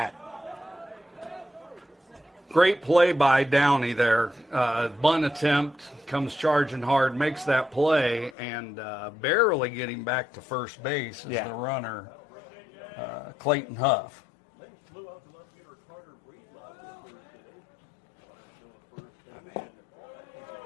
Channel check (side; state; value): right; drops out; at 8.3 s